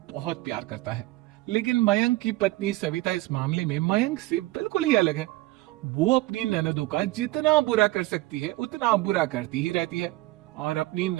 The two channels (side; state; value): left; quieter; 19.0 dB